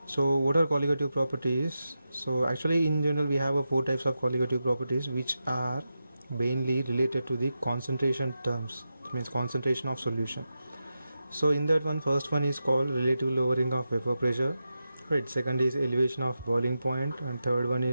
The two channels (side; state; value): both; inverted; correlation -0.90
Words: So what are colligative properties? So actually in general we have four types of colligative properties which are mainly related to the concentration terms. That means concentration of solution. So in that one, first one is called relative lowering of vapor pressure. Right, second is elevation of boiling point, and third one